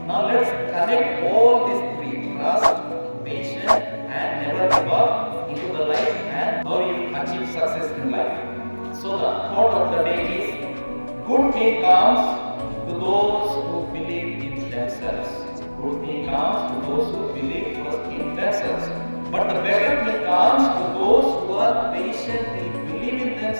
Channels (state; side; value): inverted; both; correlation -1.00